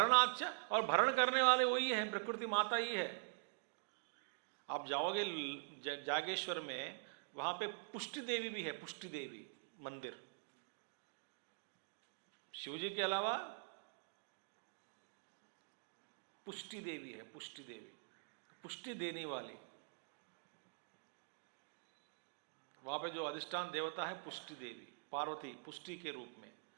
और भरण करने वाले वही है, प्रकृति माता ही है। आप जाओगे जागेश्वर में, वहां पे पुष्टि देवी भी है, पुष्टि देवी मंदिर। शिवजी के अलावा पुष्टि देवी है, पुष्टि देवी, पुष्टि देने वाली। वहाँ पे जो अधिष्ठान देवता है पुष्टि देवी, पार्वती पुष्टि के रूप में,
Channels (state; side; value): silent; left; digital silence